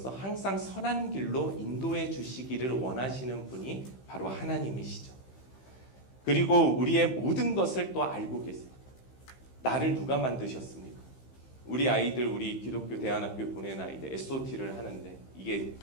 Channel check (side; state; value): right; late; 15 ms